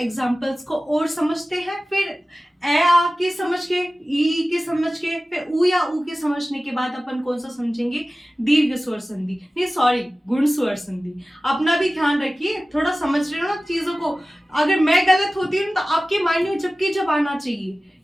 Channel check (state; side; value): normal; both; correlation 0.96